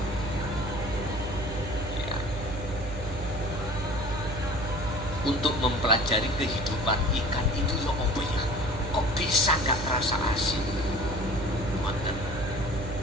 ya, untuk mempelajari kehidupan ikan itu ya apa ya, kok bisa nggak terasa asin.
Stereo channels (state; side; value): noise; right; hum, 8 dB below the sound